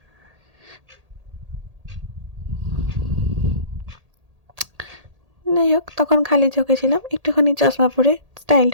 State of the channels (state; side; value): late; left; 1.8 ms